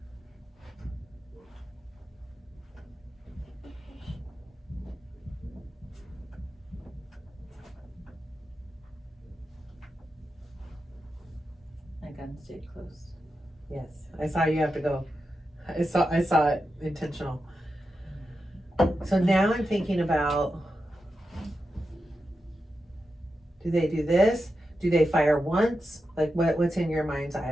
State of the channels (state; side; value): normal; both; correlation 0.89